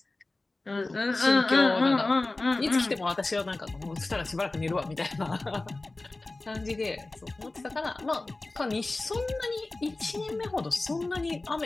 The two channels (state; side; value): quieter; right; 3.1 dB